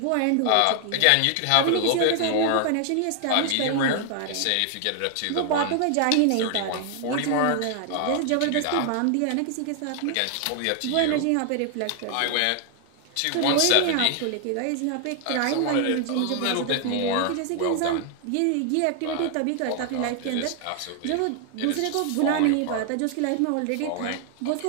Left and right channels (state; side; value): different; both; correlation 0.00